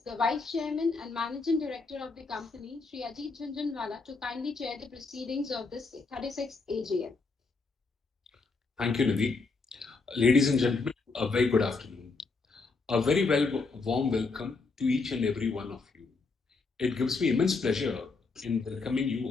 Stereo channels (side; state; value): right; quieter; 4.1 dB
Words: the Vice Chairman and Managing Director of the company, Sri Ajit Jhunjhunwala, to kindly chair the proceedings of this 36th AGM. Thank you, Nidhi. Ladies and gentlemen, a very good afternoon. A very warm welcome to each and every one of you. It gives me immense pleasure in welcoming you